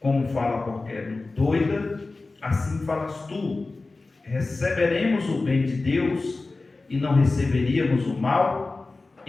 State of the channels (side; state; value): right; quieter; 3.5 dB